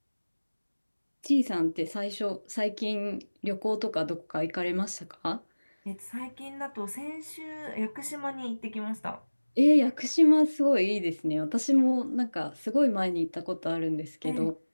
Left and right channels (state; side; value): inverted; both; correlation -1.00